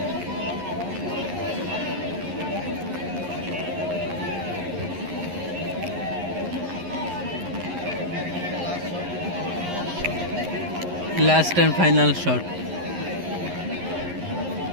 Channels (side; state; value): left; late; 11 ms